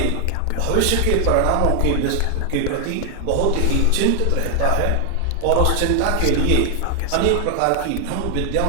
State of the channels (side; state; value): both; different; correlation 0.00